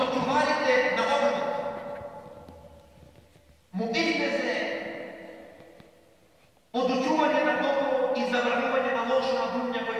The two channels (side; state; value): both; identical; correlation 1.00